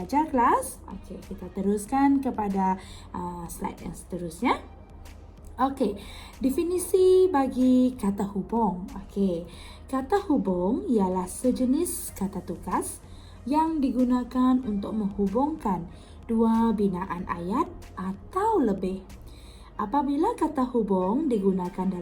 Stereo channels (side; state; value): both; identical; correlation 1.00